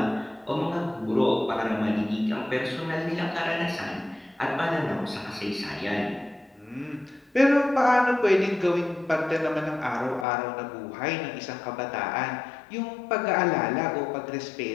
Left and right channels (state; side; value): drops out; right; at 10.2 s